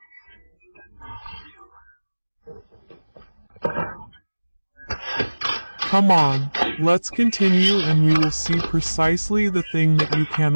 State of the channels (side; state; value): both; inverted; correlation -1.00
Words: Come on, let's continue and we will see precisely the thing that you